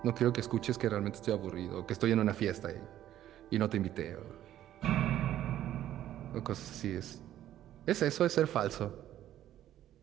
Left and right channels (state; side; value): quieter; left; 12.3 dB